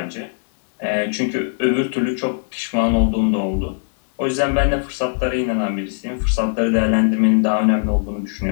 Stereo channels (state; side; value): silent; right; 65 dB below the other